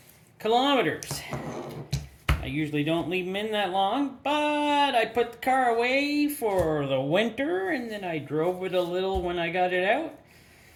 kilometers. I usually don't leave them in that long, but I put the car away for the winter and then I drove it a little when I got it out.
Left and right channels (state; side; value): identical; both; correlation 1.00